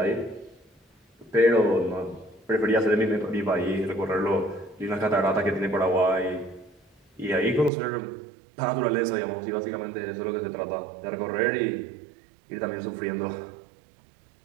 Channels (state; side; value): drops out; left; at 7.7 s